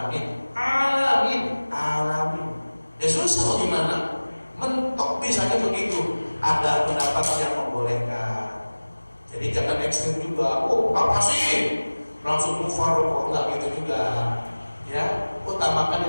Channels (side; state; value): both; inverted; correlation -1.00